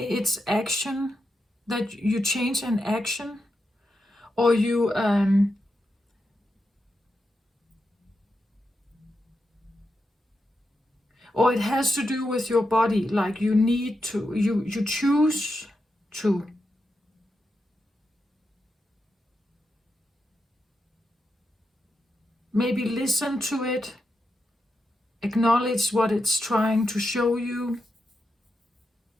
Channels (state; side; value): normal; both; correlation 0.87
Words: action, that you change an action, or you or it has to do with your body, like you need to, you choose to. Maybe listen to it, acknowledge what it's trying to show you,